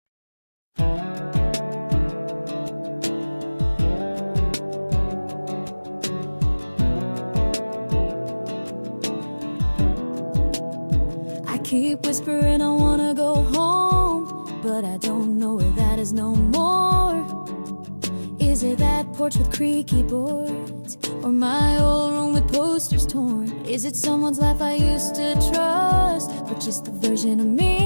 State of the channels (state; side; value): inverted; both; correlation -1.00